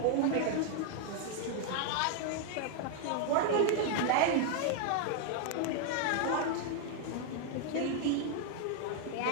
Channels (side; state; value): both; different; correlation 0.00